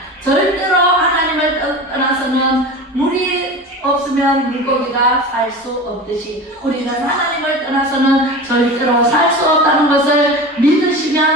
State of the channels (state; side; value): normal; both; correlation 0.31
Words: 절대로 하나님을 떠나서는 물이 없으면 물고기가 살 수 없듯이 우리는 하나님을 떠나서는 절대로 살 수 없다는 것을